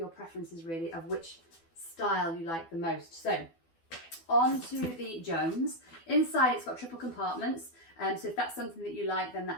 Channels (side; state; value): right; late; 12 ms